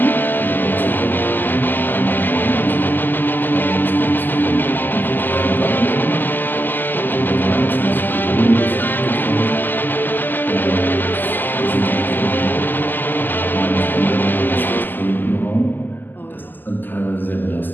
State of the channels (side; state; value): right; late; 0.090 ms